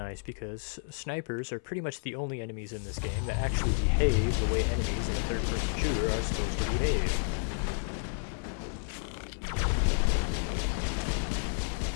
because snipers are pretty much the only enemies in this game that actually behave the way enemies in a third-person shooter are supposed to behave.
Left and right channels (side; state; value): right; silent; 57 dB below the other